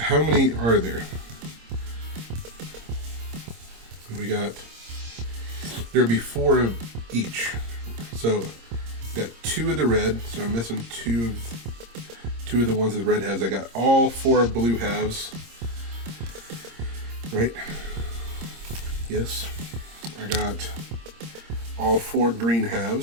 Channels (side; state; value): left; late; 26 ms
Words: how many are there? We got, there'll be 4 of each. So got 2 of the red, so I'm missing 2 of the ones with red halves. I got all 4 blue halves. Right? Yes. I got all 4 green